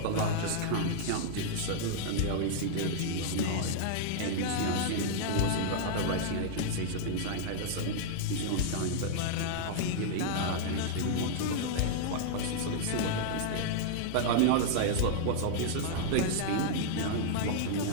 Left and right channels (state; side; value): different; both; correlation -0.01